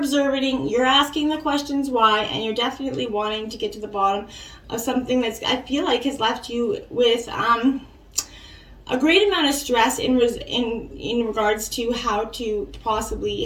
you're asking the questions why, and you're definitely wanting to get to the bottom of something that's, I feel like, has left you with a great amount of stress in regards to how to possibly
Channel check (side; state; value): both; identical; correlation 1.00